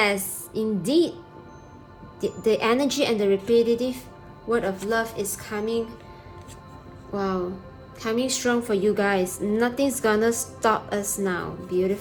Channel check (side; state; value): both; identical; correlation 1.00